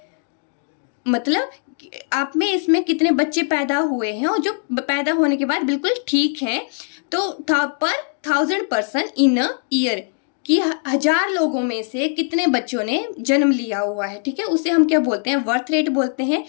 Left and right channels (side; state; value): right; silent; 57 dB below the other